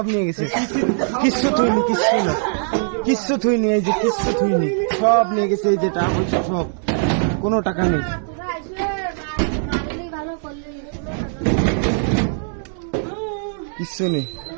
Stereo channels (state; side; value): silent; left; 64 dB below the other